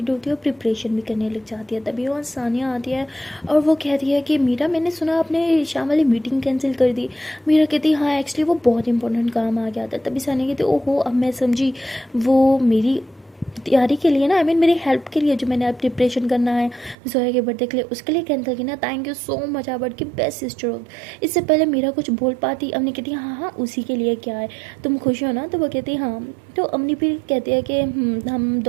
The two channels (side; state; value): left; drops out; at 16.9 s